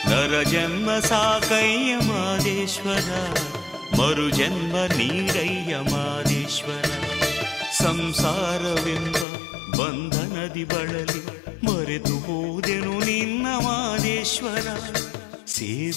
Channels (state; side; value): drops out; right; at 9.2 s